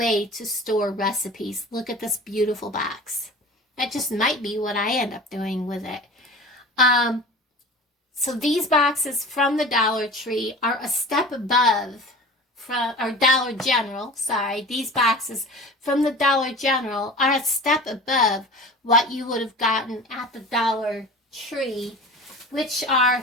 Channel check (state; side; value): normal; both; correlation 0.38